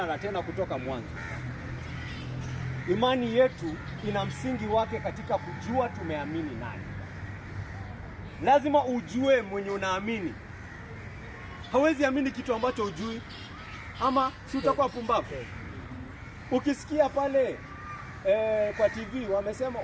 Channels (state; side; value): identical; both; correlation 1.00